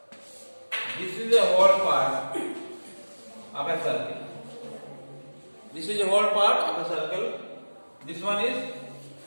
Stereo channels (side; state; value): both; inverted; correlation -1.00